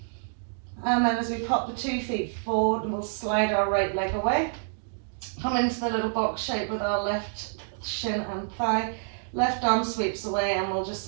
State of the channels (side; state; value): left; silent; digital silence